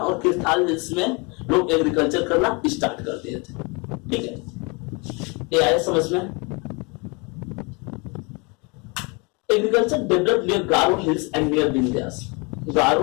किरथाल हिल्स में लोग एग्रीकल्चर करना स्टार्ट कर दिए थे, ठीक है। ये आया समझ में। Agriculture developed near Garo hills and near Vindhyas,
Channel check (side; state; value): right; quieter; 30.0 dB